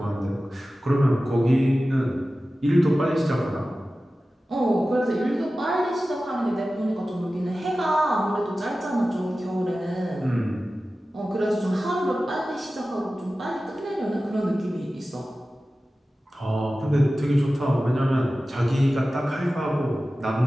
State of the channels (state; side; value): normal; both; correlation 0.95